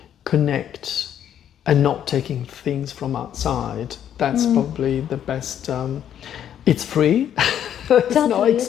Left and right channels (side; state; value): right; quieter; 9.9 dB